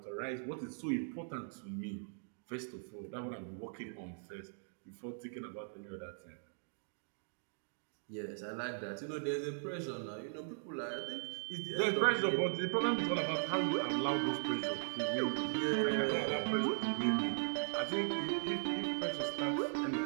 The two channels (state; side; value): silent; left; digital silence